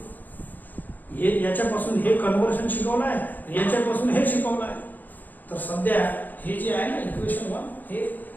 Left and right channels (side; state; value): right; late; 0.085 ms